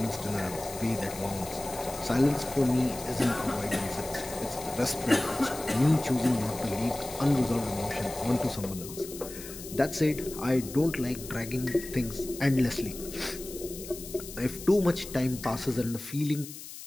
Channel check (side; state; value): left; noise; hiss, 13 dB below the sound